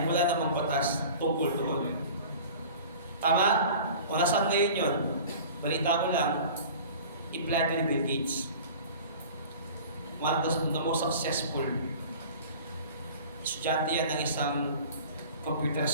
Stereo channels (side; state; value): both; inverted; correlation -0.41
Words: wala namang batas tungkol doon. Tama? Kung nasaan ngayon yun, balita ko lang, i-plan ni Bill Gates. One of the most successful estudyante yan ng isang computer